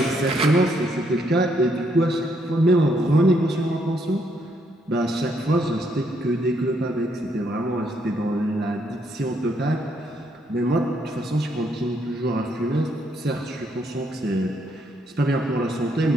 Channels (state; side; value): normal; both; correlation 0.73